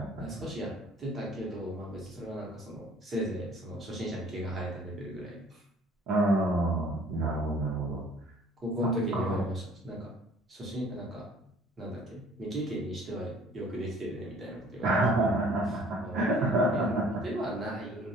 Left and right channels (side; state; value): both; normal; correlation 0.54